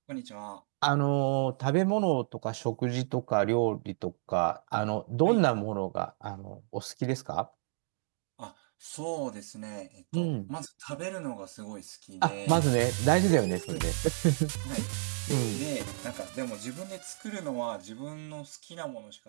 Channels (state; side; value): silent; left; digital silence